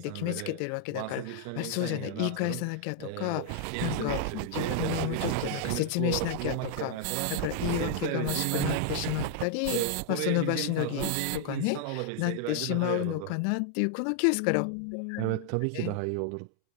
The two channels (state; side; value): different; both; correlation 0.00